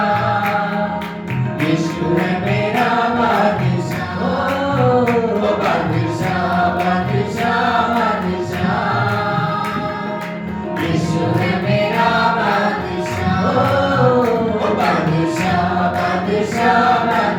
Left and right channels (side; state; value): both; identical; correlation 1.00